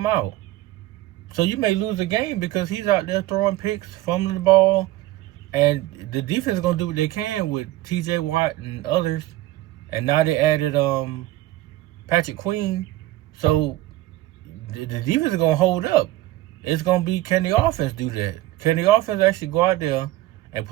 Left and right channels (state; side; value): quieter; left; 16.3 dB